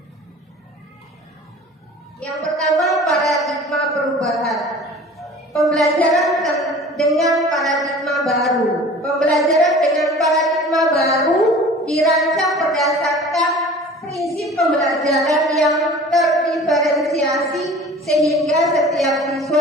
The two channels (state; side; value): normal; both; correlation 0.43